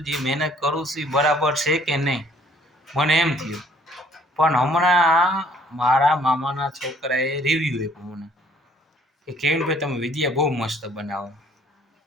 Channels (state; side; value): normal; both; correlation 0.59